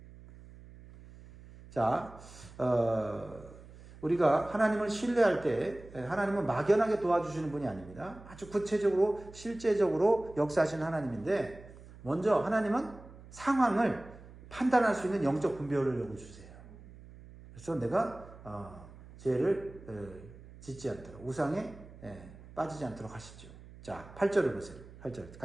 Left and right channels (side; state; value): right; noise; hum, 19 dB below the sound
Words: 자, 우리가 하나님을 신뢰할 때 하나님은 막연하게 도와주시는 분이 아닙니다. 아주 구체적으로 실제적으로 역사하시는 하나님인데, 먼저 하나님은 상황을 판단할 수 있는 영적 분별을 요구주세요. 그래서 내가 죄를 짓지 않도록, 우상에 빠지지 않도록 하시죠. 자, 8절을 보세요. 8절